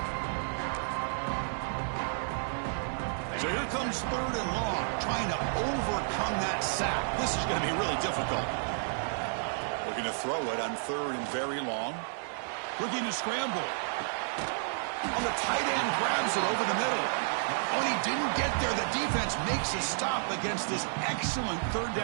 So here comes 3rd and long, trying to overcome that sack. This is going to be really difficult. Looking to throw it on 3rd and very long. Looking to scramble. On the tight end, grabs it over the middle. When he didn't get there, the defense makes a stop against this excellent 3rd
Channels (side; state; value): left; silent; digital silence